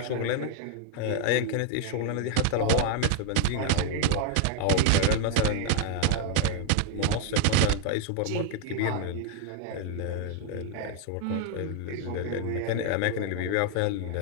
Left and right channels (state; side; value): different; both; correlation 0.00